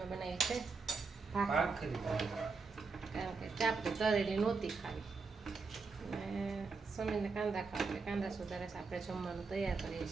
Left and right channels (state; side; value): quieter; left; 4.5 dB